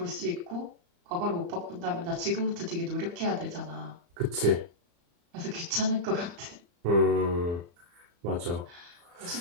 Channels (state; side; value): late; left; 35 ms